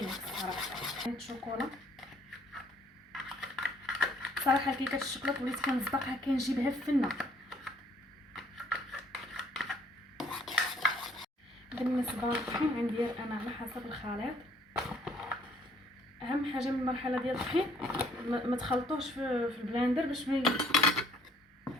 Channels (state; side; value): normal; both; correlation 0.62